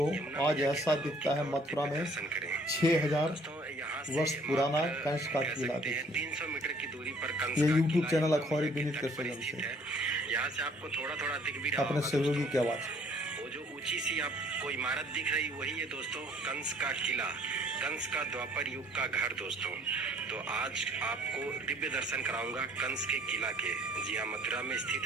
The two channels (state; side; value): normal; both; correlation 0.59